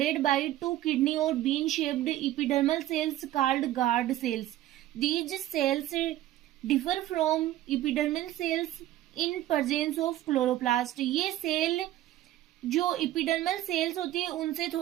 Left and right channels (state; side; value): quieter; left; 14.3 dB